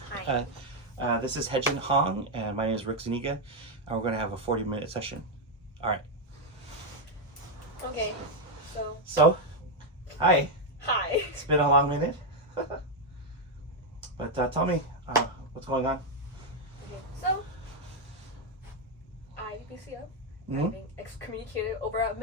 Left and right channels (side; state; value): both; normal; correlation 0.02